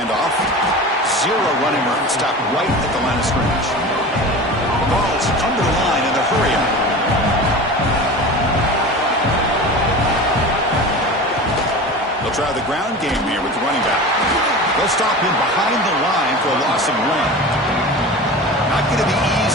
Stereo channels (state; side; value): normal; both; correlation 0.33